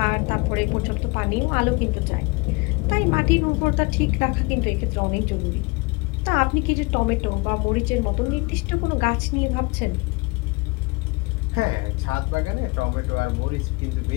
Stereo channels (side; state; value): right; quieter; 26.6 dB